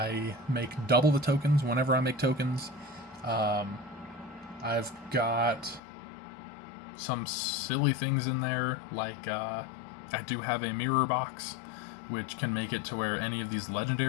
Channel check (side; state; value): right; drops out; at 5.8 s